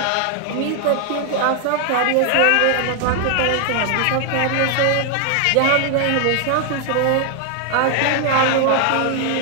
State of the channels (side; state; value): both; different; correlation 0.00